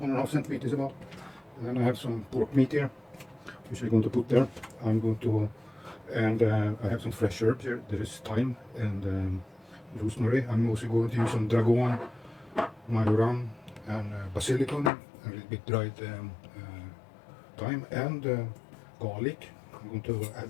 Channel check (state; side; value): drops out; right; at 14.9 s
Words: 1.5 centimeters about. And then I have some pork meat here, which I'm going to put there. I have some fresh herbs here. There is thyme and rosemary. I'm also going to use some dragon, majoram, and basilicum, a little bit dried thyme and garlic. I'm going to